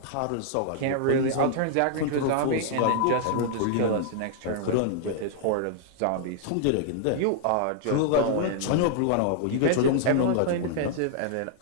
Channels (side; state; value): both; different; correlation -0.01